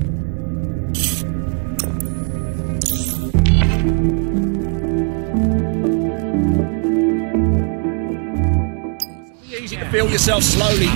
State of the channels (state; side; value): quieter; left; 38.8 dB